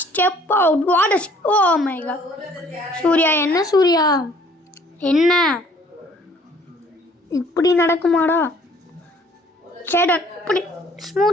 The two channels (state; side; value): normal; both; correlation 0.57